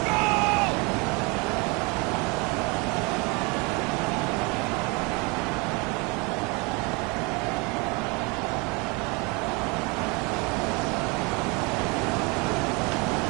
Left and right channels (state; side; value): quieter; left; 28.7 dB